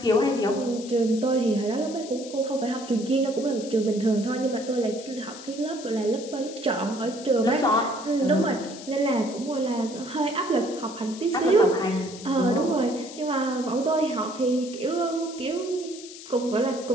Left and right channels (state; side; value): noise; left; hiss, 15 dB below the sound